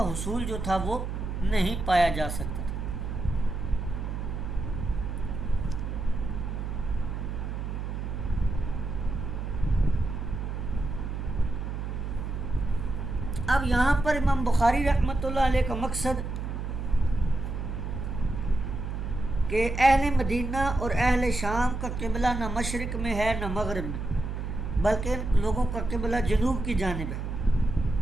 حصول جو تھا وہ نہیں پایا جا سکتا تھا۔ اب یہاں پر امام بخاری رحمۃ اللہ علیہ کا مقصد کہ اہل مدینہ اور اہل شام کا قبلہ نہ مشرق میں ہے نہ مغرب میں، بلکہ ان لوگوں کا قبلہ جنوب کی جانب ہے۔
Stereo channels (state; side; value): noise; right; hum, 4 dB below the sound